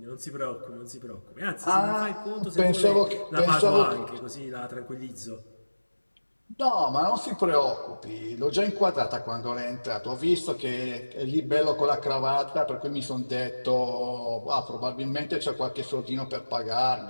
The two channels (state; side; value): inverted; both; correlation -1.00